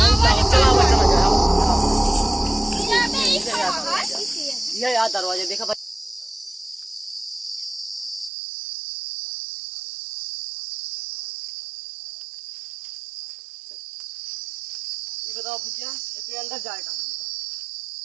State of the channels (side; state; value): left; drops out; at 8.3 s